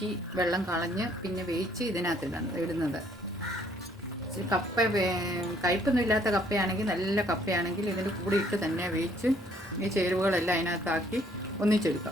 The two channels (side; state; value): both; normal; correlation 0.64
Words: വെള്ളം കളഞ്ഞ് പിന്നെ വേവിച്ച് ഇതിനകത്ത് ഇടുന്നത്. കപ്പ കയ്പൊന്നും ഇല്ലാത്ത കപ്പയാണെങ്കിൽ, നല്ല കപ്പയാണെങ്കിൽ ഇതിൻ്റെ കൂടെ ഇട്ട് തന്നെ വേവിച്ച് ഈ ചേരുവകളെല്ലാം അതിനകത്താക്കി